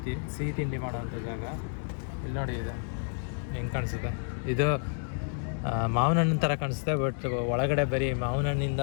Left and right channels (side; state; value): right; silent; 58 dB below the other